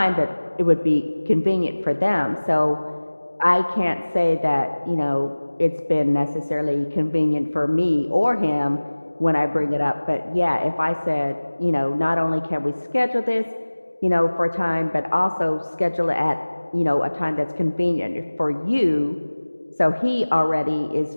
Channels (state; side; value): inverted; both; correlation -1.00